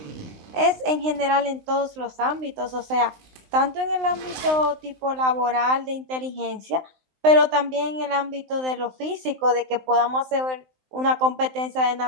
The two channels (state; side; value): late; left; 19 ms